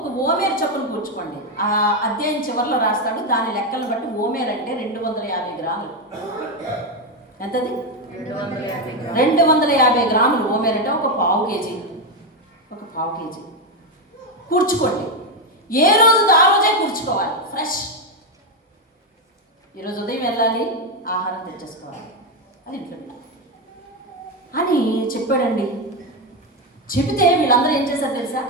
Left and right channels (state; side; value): normal; both; correlation 0.07